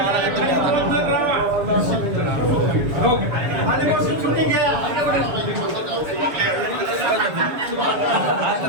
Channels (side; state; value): left; late; 7.0 ms